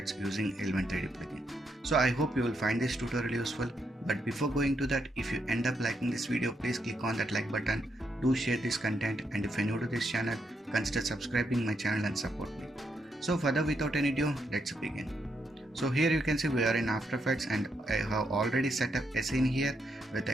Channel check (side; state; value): both; normal; correlation 0.80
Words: using Element 3D plugin. So I hope you will find this tutorial useful, but before going to that, if you end up liking this video, please click on that like button, do share this content, and if you're new to this channel, consider subscribing my channel and support me. So further without any ado, let's begin. So here you can see we are in After Effects and I have already set up a scene here with